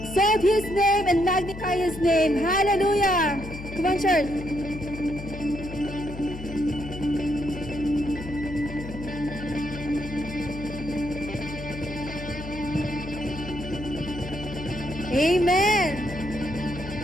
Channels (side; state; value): left; noise; hum, 11 dB below the sound